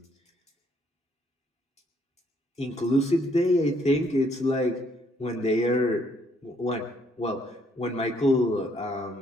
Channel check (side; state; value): both; normal; correlation 0.68